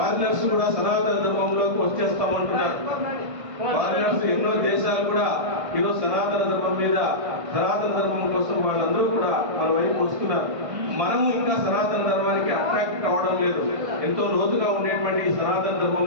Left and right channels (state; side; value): late; left; 1.6 ms